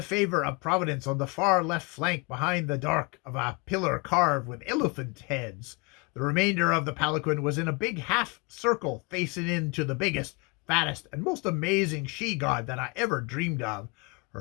favor of Providence on the far left flank behind the dark of a pillar carved with elephant heads. The remainder of the palanquin was in a big half circle facing into the biggest, fattest, and most amazing she-god that I ever dreamed of.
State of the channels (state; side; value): quieter; right; 28.6 dB